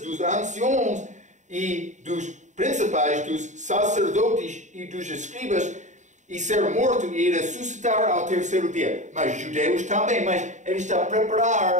dos anciãos e dos principais, dos sacerdotes e dos escribas, e ser morto e ressuscitar ao terceiro dia. Mas judeus também, mas ele está a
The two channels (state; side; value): late; left; 0.35 ms